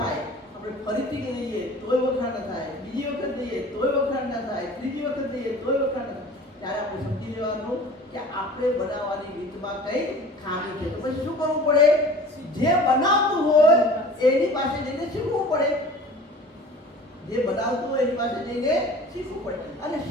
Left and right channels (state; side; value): normal; both; correlation 0.43